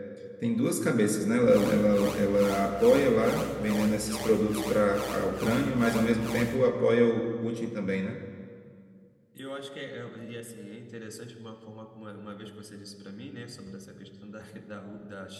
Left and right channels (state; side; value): identical; both; correlation 1.00